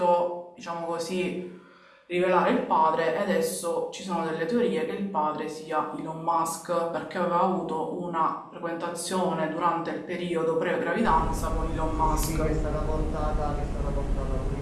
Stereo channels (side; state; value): both; identical; correlation 1.00